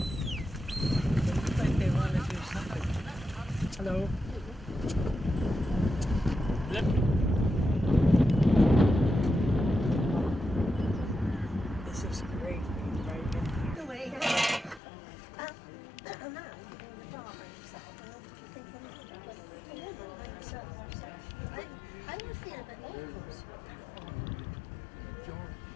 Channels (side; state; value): right; drops out; at 14.8 s